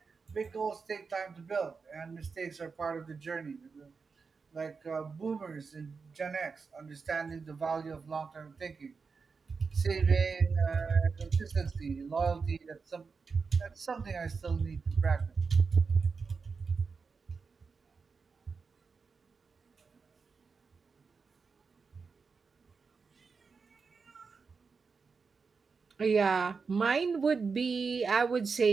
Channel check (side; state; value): left; quieter; 5.0 dB